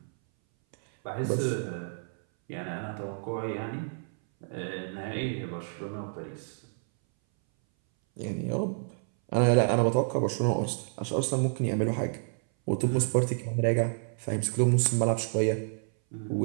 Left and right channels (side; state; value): left; silent; 58 dB below the other